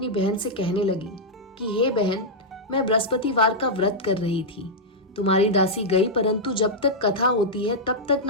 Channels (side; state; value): both; normal; correlation -0.06